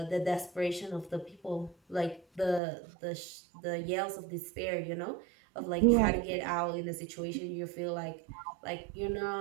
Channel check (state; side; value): drops out; left; at 2.6 s